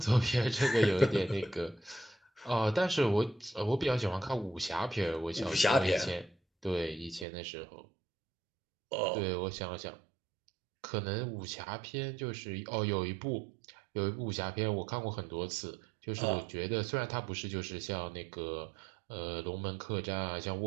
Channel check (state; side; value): drops out; left; at 7.2 s